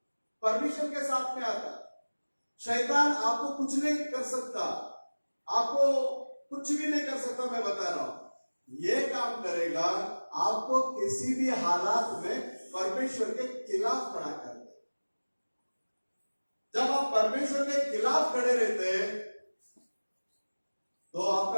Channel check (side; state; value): both; inverted; correlation -1.00